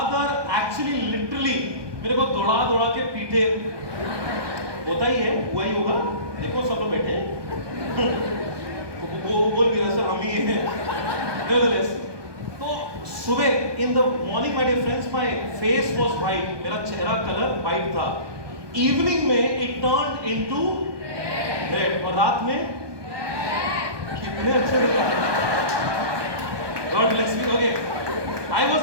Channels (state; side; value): late; left; 1.2 ms